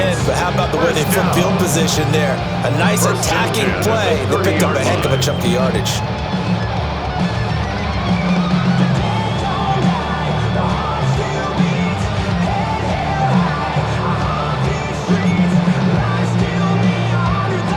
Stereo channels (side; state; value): both; identical; correlation 1.00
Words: but how about the way they flip field position there? A nice attacking play. They picked up a heck of a chunk of yardage.